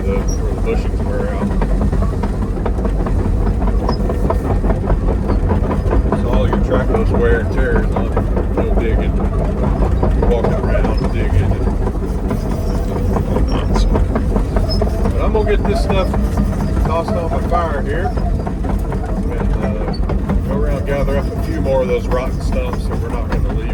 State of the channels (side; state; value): both; identical; correlation 1.00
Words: the bushings wear out. So all your tracos wear and tears on no digging, walking around, digging, and whatnot. But I'm gonna get this stuff tossed on my fire here and go around, gather up a few more of those rotten stumps that we're not going to leave